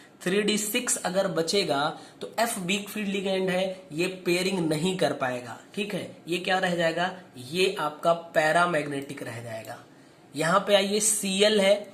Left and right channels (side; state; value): both; identical; correlation 1.00